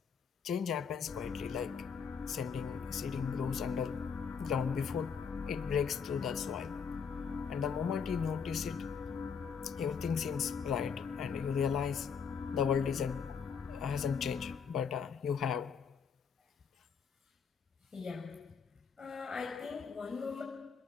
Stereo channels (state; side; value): quieter; right; 6.4 dB